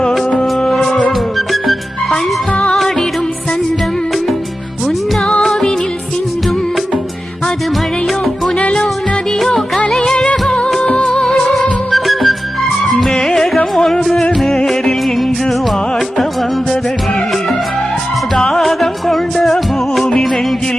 பண்பாடிடும் சந்தம் உன்னாவினில் சிந்தும் அது மழையோ புனலோ நதியோ கலையழகோ மேகம் ஒன்று நேரில் இங்கு வாழ்த்த வந்ததடி தாகம் கொண்ட பூமி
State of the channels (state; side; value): normal; both; correlation 0.93